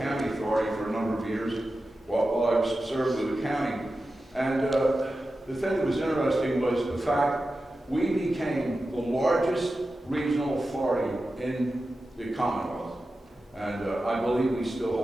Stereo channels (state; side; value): normal; both; correlation 0.93